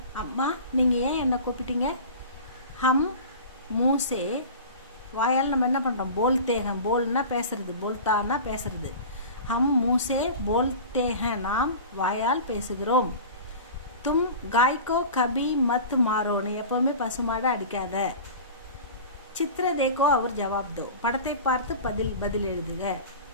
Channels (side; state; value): both; inverted; correlation -0.36